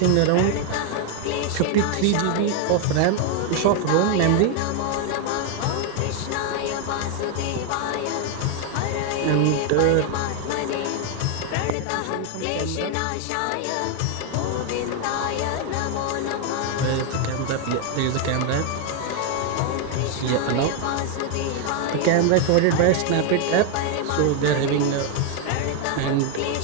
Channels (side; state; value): both; different; correlation 0.01